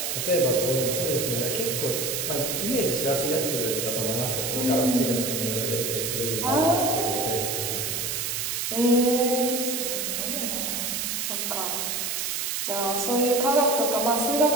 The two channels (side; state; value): right; noise; hiss, 1 dB below the sound